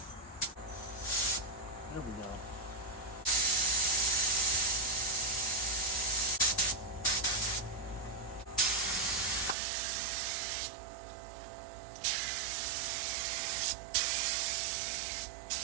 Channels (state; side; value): drops out; left; at 9.6 s